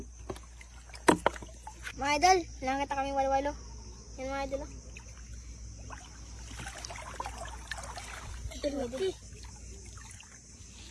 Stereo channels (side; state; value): both; identical; correlation 1.00